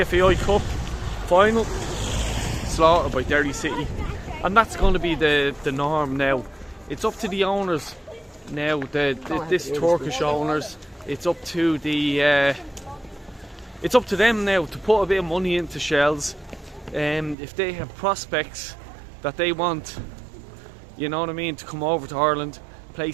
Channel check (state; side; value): drops out; left; at 17.4 s